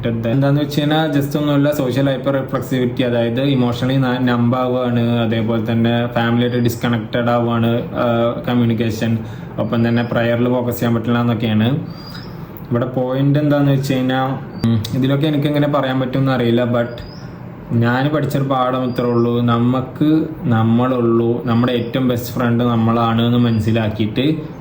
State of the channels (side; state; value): both; identical; correlation 1.00